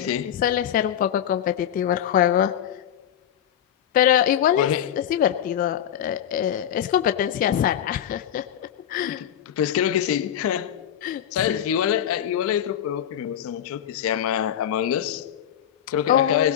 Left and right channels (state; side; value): quieter; right; 10.1 dB